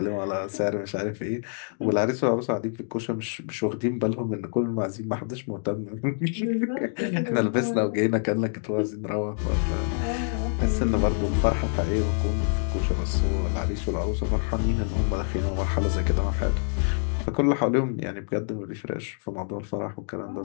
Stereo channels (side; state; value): right; silent; 61 dB below the other